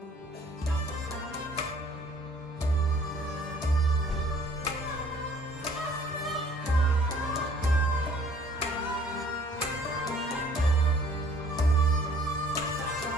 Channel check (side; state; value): both; normal; correlation 0.57